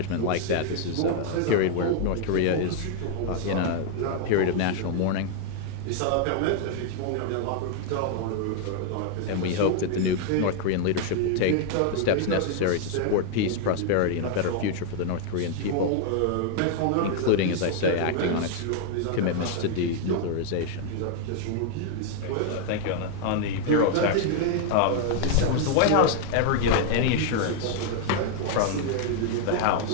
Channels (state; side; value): different; both; correlation 0.00